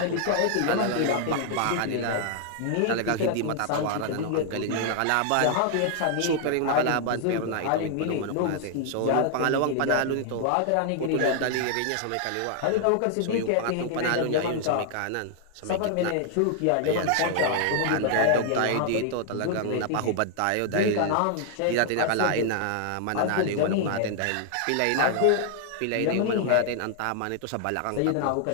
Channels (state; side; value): different; both; correlation 0.00